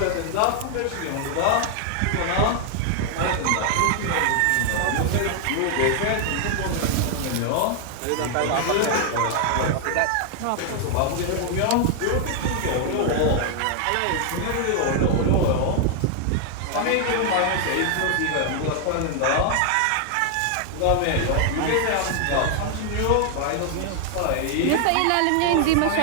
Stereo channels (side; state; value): both; different; correlation 0.00